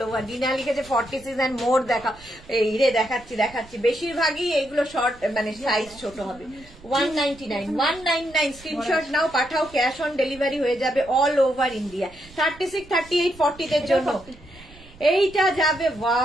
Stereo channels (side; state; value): right; noise; rumble, 22 dB below the sound